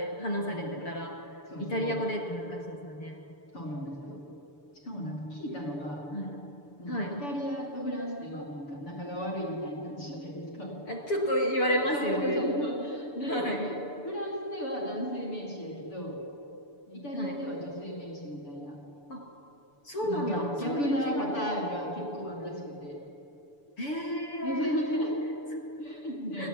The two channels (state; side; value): late; right; 6.9 ms